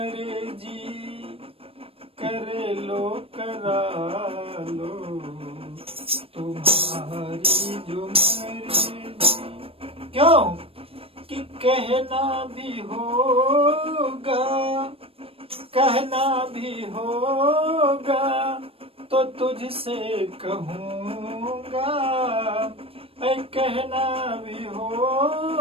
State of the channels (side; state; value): left; late; 0.28 ms